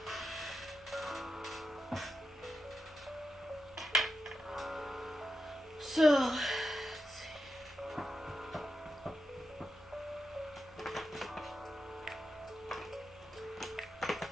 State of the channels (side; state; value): both; normal; correlation 0.88